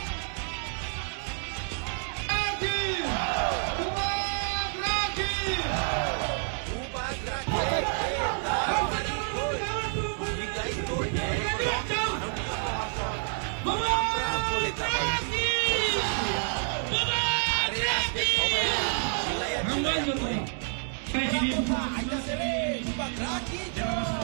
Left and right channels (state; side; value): silent; left; 58 dB below the other